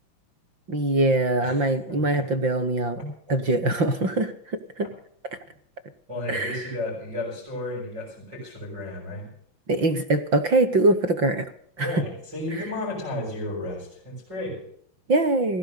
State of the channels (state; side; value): late; left; 5.8 ms